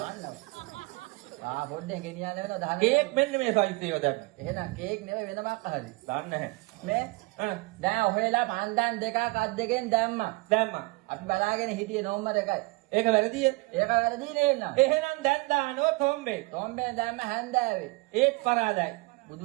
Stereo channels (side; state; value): left; quieter; 25.2 dB